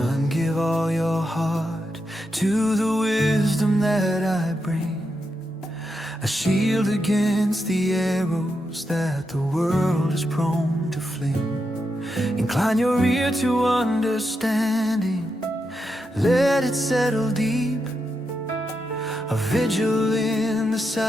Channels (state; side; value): normal; both; correlation 0.85